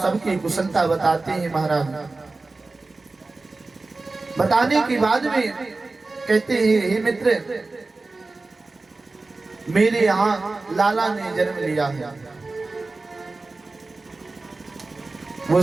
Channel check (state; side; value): quieter; left; 3.5 dB